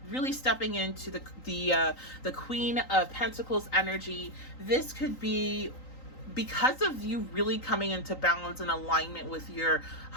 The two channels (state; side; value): late; right; 3.9 ms